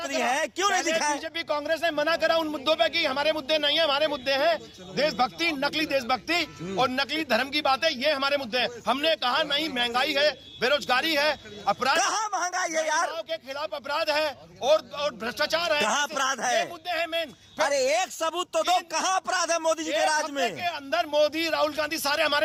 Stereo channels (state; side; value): identical; both; correlation 1.00